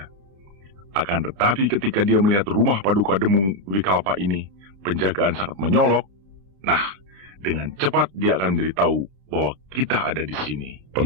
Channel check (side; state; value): left; late; 31 ms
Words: Akan tetapi ketika dia melihat rumah Paduka Demung Wikalpa ini, penjagaan sangat menyolok. Nah, dengan cepat dia akan memberitahu bahwa kita ada di sini.